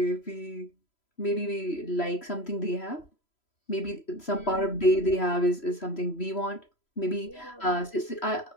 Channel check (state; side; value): late; right; 3.0 ms